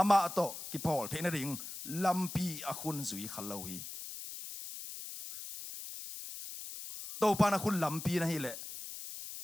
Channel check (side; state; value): left; noise; hiss, 10 dB below the sound